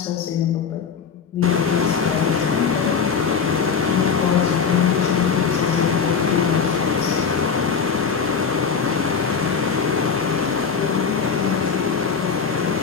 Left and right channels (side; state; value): right; quieter; 6.1 dB